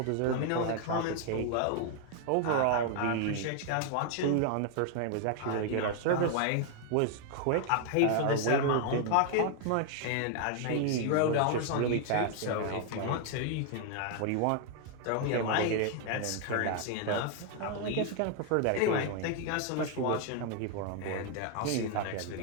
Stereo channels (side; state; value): both; different; correlation 0.00